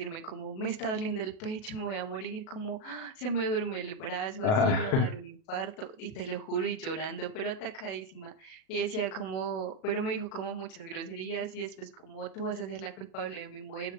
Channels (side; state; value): right; late; 37 ms